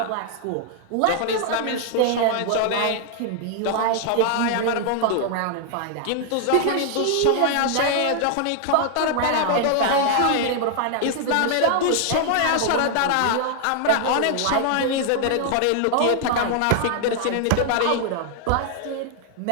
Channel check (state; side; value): different; both; correlation 0.00